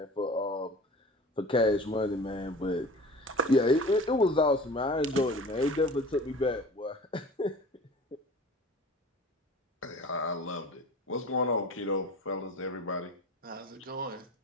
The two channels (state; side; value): normal; both; correlation 0.40